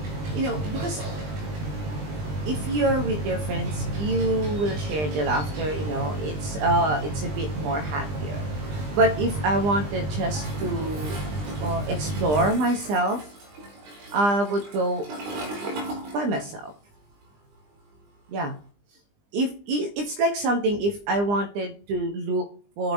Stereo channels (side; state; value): left; late; 20 ms